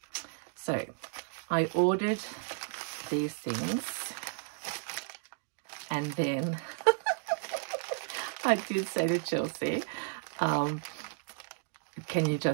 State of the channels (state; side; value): silent; left; digital silence